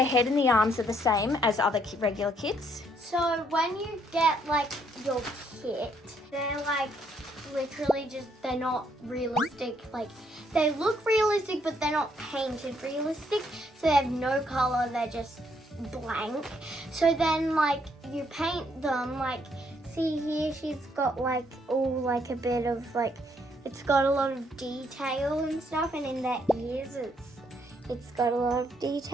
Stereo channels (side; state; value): both; normal; correlation 0.70